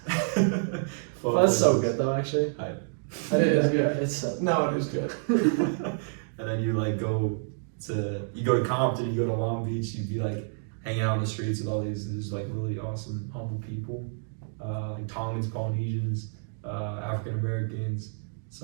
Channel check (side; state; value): left; silent; digital silence